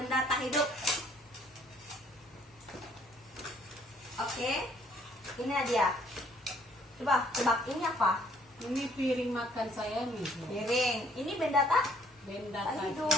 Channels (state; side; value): normal; both; correlation 0.62